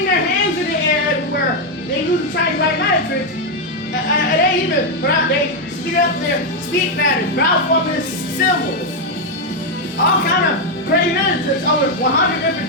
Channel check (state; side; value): normal; both; correlation 0.02